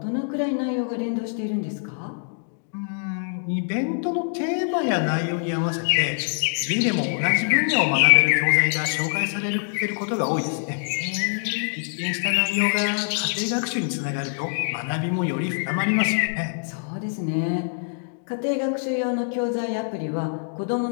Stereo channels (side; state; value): right; silent; digital silence